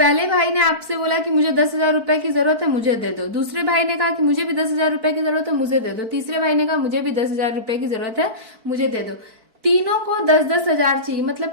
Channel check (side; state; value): left; late; 4.5 ms